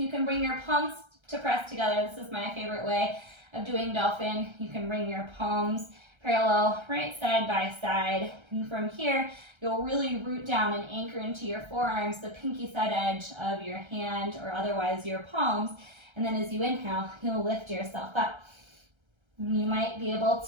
can bring your palms to press together. This is my favorite way of doing dolphin. You can bring your palms parallel, right side by side. And from here, you'll really root down and anchor into your forearms, the pinky side edge of your hand or otherwise your palms. And then as you inhale, you'll lift yourself up. You might be able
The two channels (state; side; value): late; left; 1.3 ms